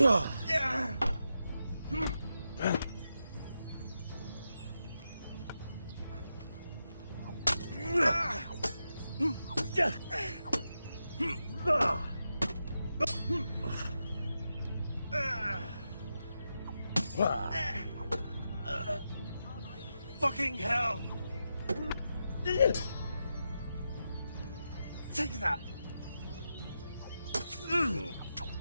fucking hell! Take that!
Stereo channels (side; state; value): both; inverted; correlation -0.87